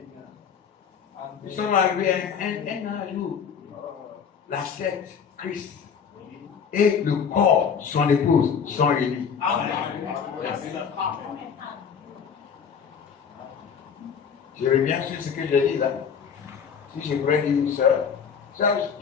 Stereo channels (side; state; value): right; quieter; 6.9 dB